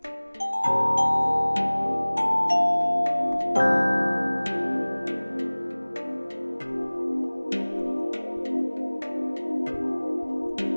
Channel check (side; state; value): both; inverted; correlation -1.00